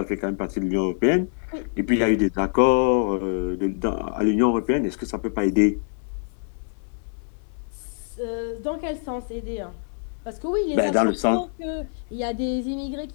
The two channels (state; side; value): silent; right; digital silence